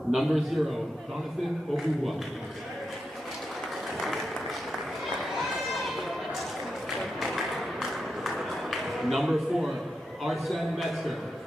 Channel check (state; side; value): normal; both; correlation 0.87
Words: Number 0, Jonathan Obuwa. Number 4, Arsène Metzger.